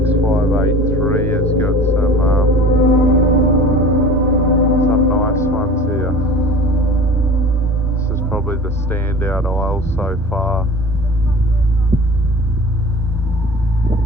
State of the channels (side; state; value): both; normal; correlation 0.40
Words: 583 has got some nice ones here. This is probably the standout aisle so far.